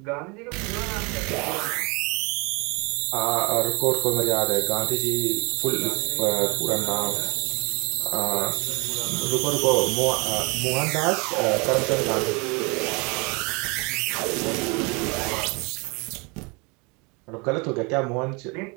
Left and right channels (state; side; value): quieter; left; 29.6 dB